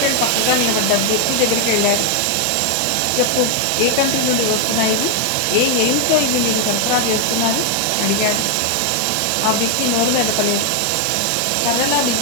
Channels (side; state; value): both; different; correlation 0.00